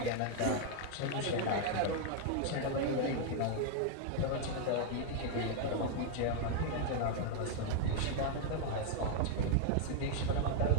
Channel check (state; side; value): different; both; correlation 0.00